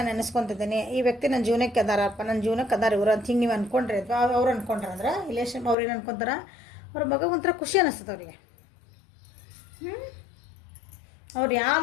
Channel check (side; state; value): right; drops out; at 5.8 s